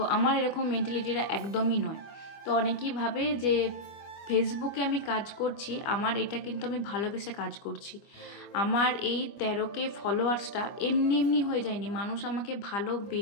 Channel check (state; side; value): late; right; 25 ms